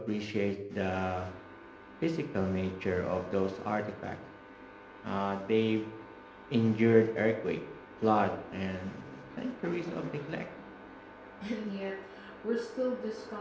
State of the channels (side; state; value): both; identical; correlation 1.00